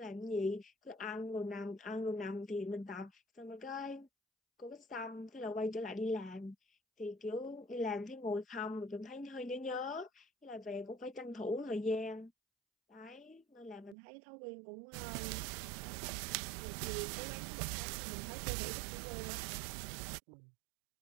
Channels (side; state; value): left; drops out; at 14.0 s